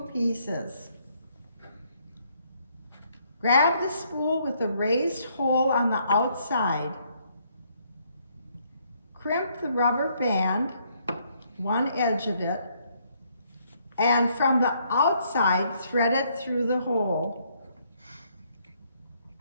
pieces. Grab the spool with the raised hole on the outside. Crimp the rubber band, one edge of it, and from the outside, thread it through the hole.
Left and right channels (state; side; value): inverted; both; correlation -0.70